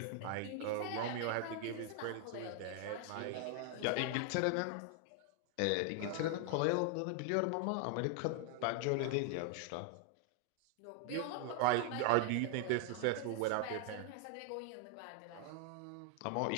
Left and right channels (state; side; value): different; both; correlation 0.00